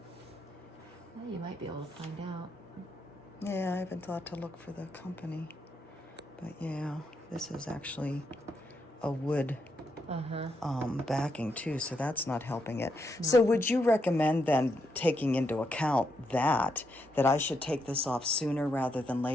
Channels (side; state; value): both; normal; correlation 0.80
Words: Well, you might be able to find out. Yeah, I haven't thought to look for the company. But yeah, this is actually a wood backing too, so that's not helping it. No. So would you recommend then, taking into account that I should take this off sooner rather than